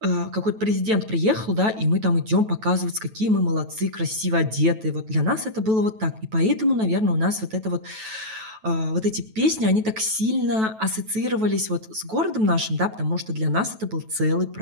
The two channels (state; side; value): late; left; 9.2 ms